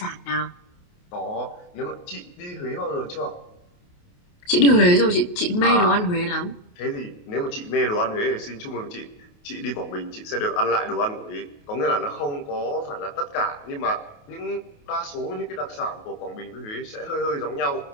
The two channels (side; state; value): right; late; 28 ms